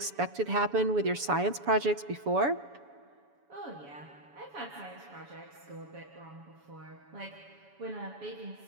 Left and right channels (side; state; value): left; late; 7.1 ms